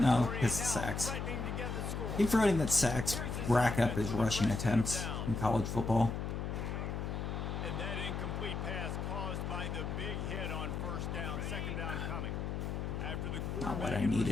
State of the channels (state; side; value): noise; left; hum, 3 dB below the sound